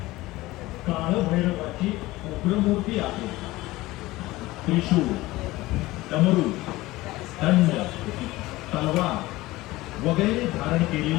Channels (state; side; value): quieter; right; 18.8 dB